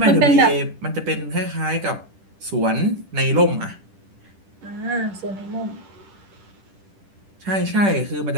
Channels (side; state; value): left; late; 10 ms